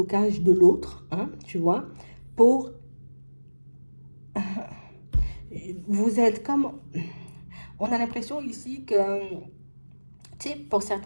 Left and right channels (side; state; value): both; inverted; correlation -1.00